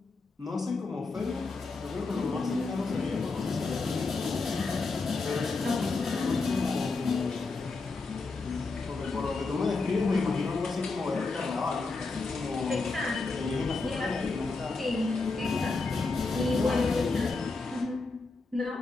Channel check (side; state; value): right; quieter; 3.9 dB